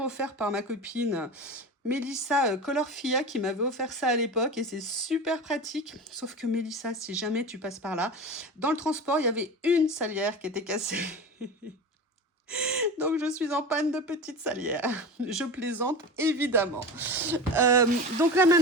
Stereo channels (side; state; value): both; normal; correlation 0.29